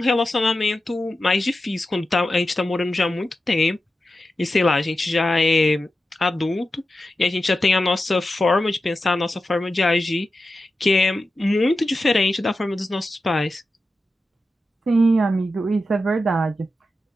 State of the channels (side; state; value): both; normal; correlation 0.91